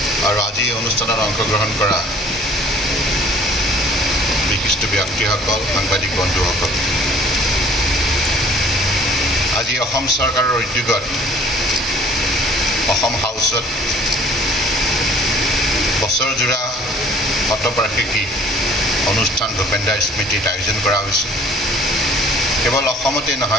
আৰু আজি এই অনুষ্ঠানত অংশগ্ৰহণ কৰা বিশিষ্ট ব্যক্তিসকল সাংবাদিক বন্ধুসকল আজি অসম চৰকাৰৰ উদ্যোগত অসম হাউচত বছৰজোৰা শতবাৰ্ষিকী অনুষ্ঠান ভূপেন দাৰ স্মৃতিত আয়োজন কৰা হৈছে কেৱল অসমতে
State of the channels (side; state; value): both; normal; correlation 0.53